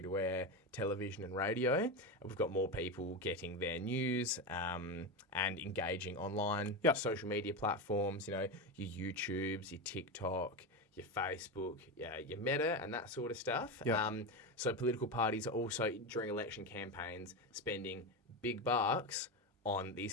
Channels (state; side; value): normal; both; correlation 0.16